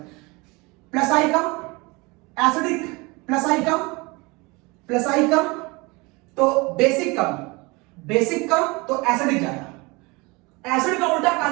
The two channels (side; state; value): left; quieter; 25.7 dB